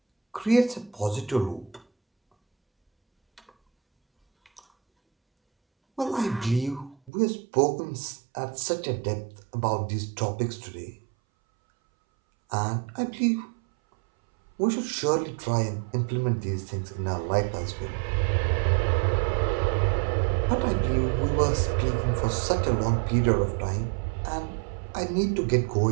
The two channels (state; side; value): drops out; left; at 7.1 s